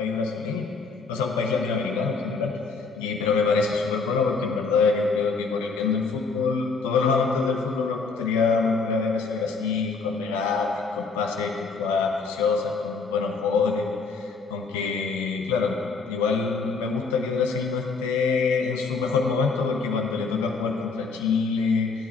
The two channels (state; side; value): quieter; right; 4.5 dB